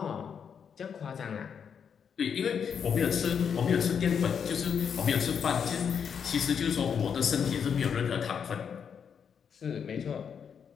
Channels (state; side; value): quieter; right; 7.2 dB